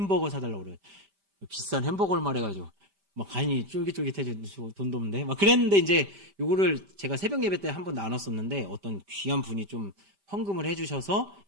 사달라고 그래요. 비싼 햄버거를 말해가지고 막 간이 쫄깃쫄깃해져 돈도 없는데 막 그랬는데 이제 요거를 제가 새벽 예배 때 한번 나눴었는데 어떤 귀한 분이 좀 헌금을 해주셔서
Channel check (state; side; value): late; left; 5.1 ms